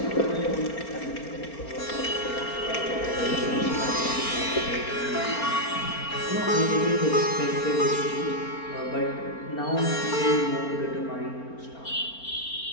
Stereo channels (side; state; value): right; late; 4.4 ms